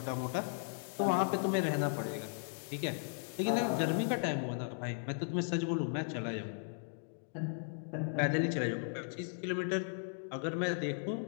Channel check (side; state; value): right; silent; digital silence